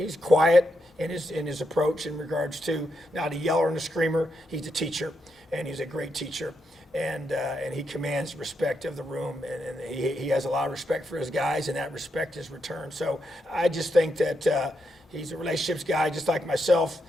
quiet in his approach in regards to not a yeller and a screamer. He's a teacher, and he's a great teacher. And he commands respect of the room, and he has a lot of respect for his guys, and that respect is returned. So I just think that he's a relationships guy just like myself,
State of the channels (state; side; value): normal; both; correlation 0.82